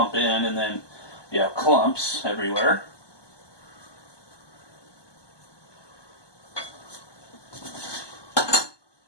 in and then you have clumps everywhere.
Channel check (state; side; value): late; right; 1.2 ms